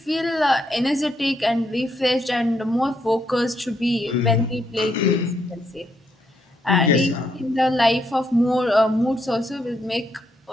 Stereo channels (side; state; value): both; normal; correlation 0.77